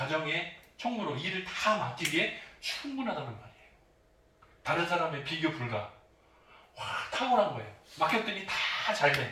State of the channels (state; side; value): identical; both; correlation 1.00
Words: 총무로 일을 다 맡기기에 충분하다는 말이에요. 다른 사람의 비교 불가. 탁월한 거예요. 맡겼더니 다 잘